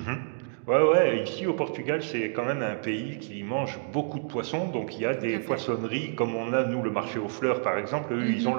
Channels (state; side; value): silent; left; digital silence